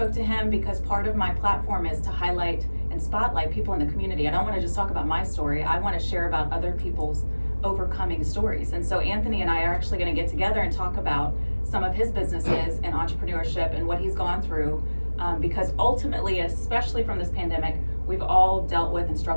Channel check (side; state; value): both; inverted; correlation -1.00